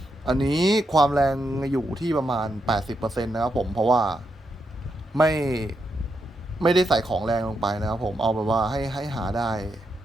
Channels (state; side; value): normal; both; correlation 0.83